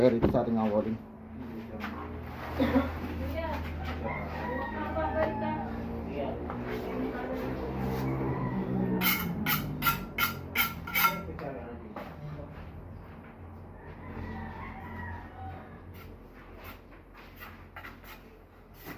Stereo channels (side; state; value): both; identical; correlation 1.00